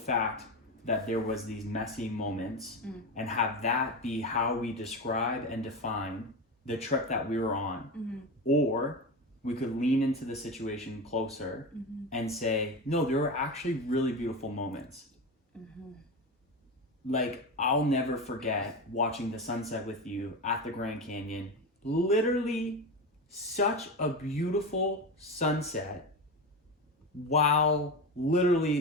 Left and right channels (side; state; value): both; normal; correlation 0.21